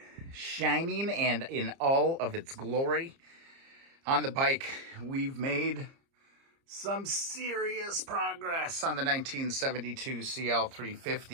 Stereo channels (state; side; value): late; left; 30 ms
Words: Shining and in all of its glory. On the bike, we've made some serious progress on the 1972